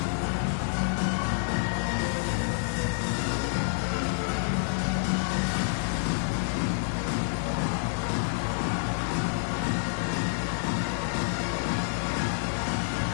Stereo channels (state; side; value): silent; right; digital silence